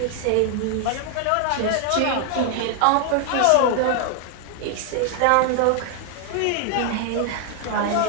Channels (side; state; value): both; different; correlation 0.00